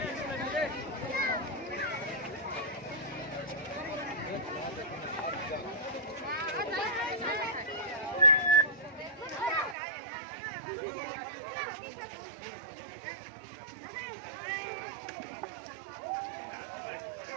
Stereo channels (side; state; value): left; drops out; at 9.8 s